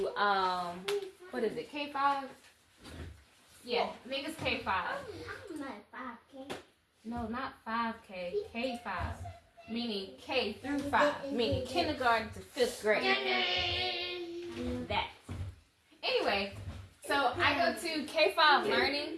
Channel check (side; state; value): both; identical; correlation 1.00